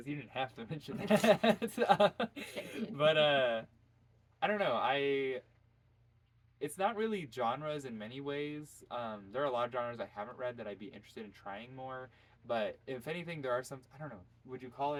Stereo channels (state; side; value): identical; both; correlation 1.00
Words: you didn't have to mention that. But I don't know. It's not really genres in many ways. There are a lot of genres I haven't read that I'd be interested in trying more. But if anything, there are some. I don't know. Would you call